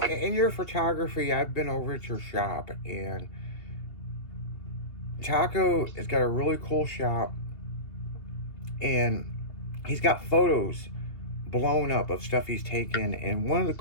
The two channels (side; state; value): right; late; 2.9 ms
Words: in your photography, I've been over at your shop, and Taco has got a really cool shop, and he's got photos blown up of stuff he's taken, and one of the